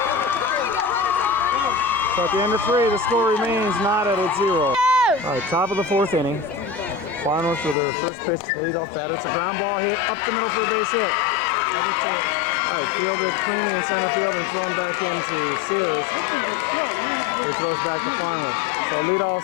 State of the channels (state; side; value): drops out; right; at 7.8 s